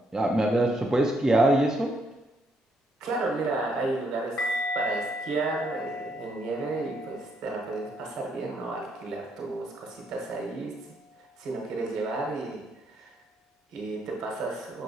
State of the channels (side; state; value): both; normal; correlation 0.74